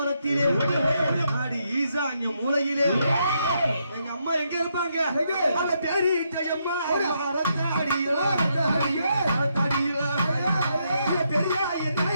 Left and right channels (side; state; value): both; inverted; correlation -0.78